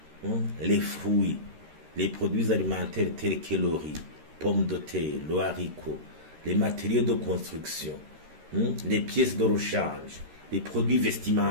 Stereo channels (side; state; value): left; late; 13 ms